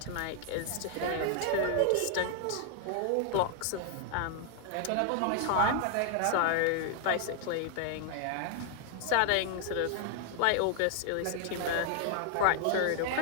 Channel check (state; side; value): different; both; correlation 0.00